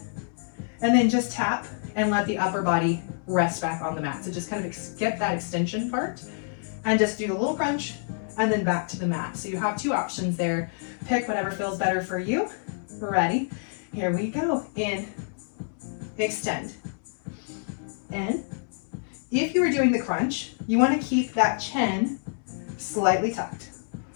and then just tap and let the upper body rest back on the mat. So just kind of skip that extension part and just do the little crunch and then back to the mat. So you have 2 options there. Pick whatever feels better for you. Ready? Here we go. In, extend, in. If you were doing the crunch, you want to keep that chin slightly tucked.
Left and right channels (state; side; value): silent; right; 60 dB below the other